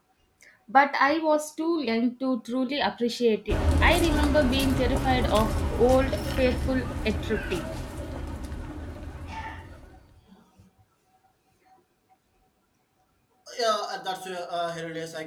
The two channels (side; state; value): both; identical; correlation 1.00